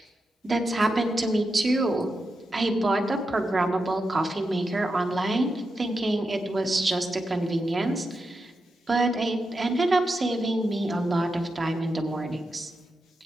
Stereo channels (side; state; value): both; normal; correlation 0.88